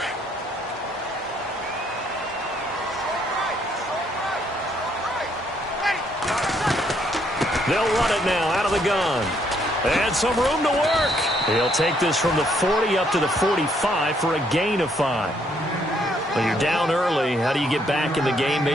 They'll run it now out of the gun. And some room to work. He'll take this from the 40 up to the 45 for a gain of 5. Well, you're down early. How do you get back in the game?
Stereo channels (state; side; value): normal; both; correlation 0.70